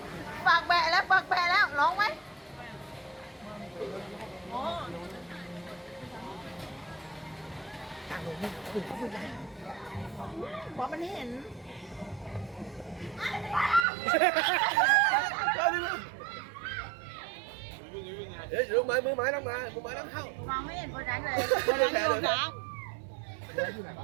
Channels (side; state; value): left; drops out; at 13.9 s